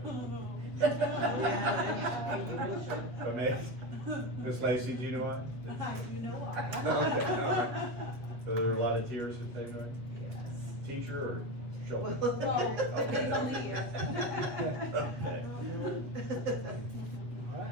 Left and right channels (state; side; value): late; left; 7.8 ms